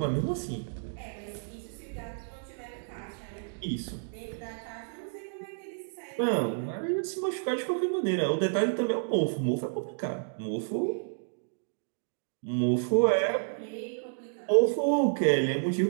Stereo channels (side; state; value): left; silent; digital silence